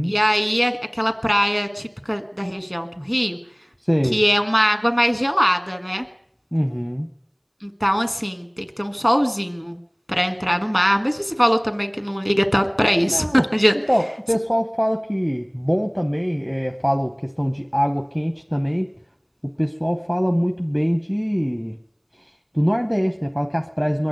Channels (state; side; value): identical; both; correlation 1.00